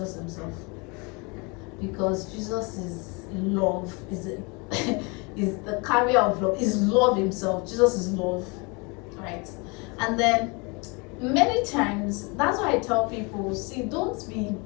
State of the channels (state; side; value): quieter; right; 29.8 dB